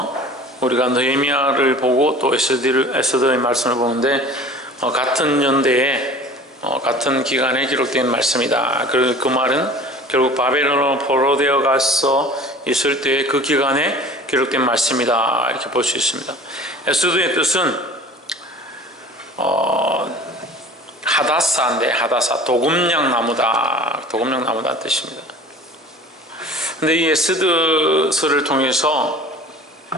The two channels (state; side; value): normal; both; correlation 0.43